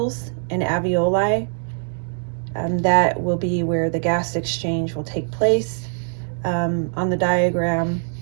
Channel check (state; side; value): silent; left; digital silence